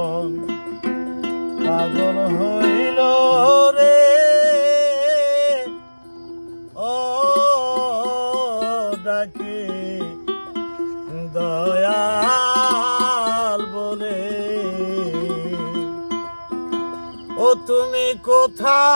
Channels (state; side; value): inverted; both; correlation -1.00